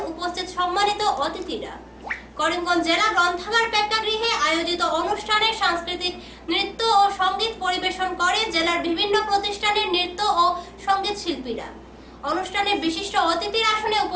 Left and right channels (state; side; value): identical; both; correlation 1.00